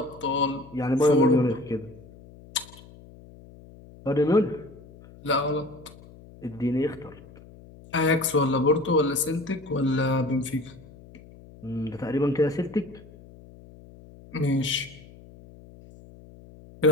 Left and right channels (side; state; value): left; noise; hum, 21 dB below the sound